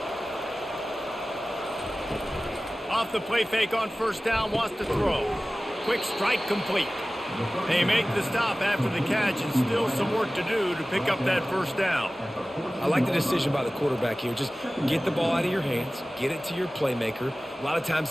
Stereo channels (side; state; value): both; normal; correlation 0.97